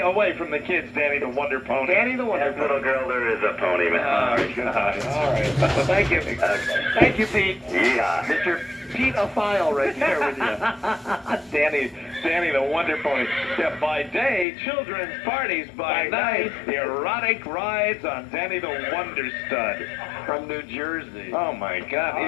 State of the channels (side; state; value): right; drops out; at 14.5 s